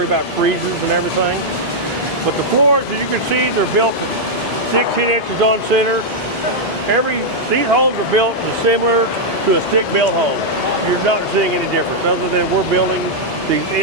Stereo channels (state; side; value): normal; both; correlation -0.04